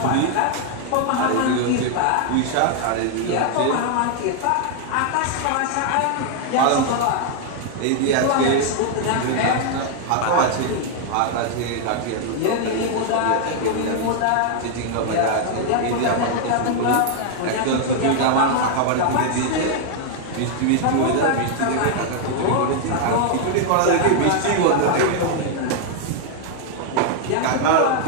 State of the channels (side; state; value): both; different; correlation 0.00